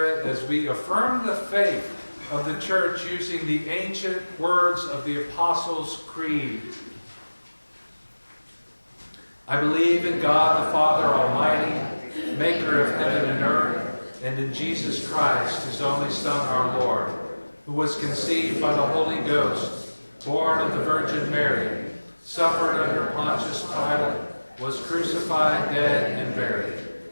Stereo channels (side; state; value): both; inverted; correlation -1.00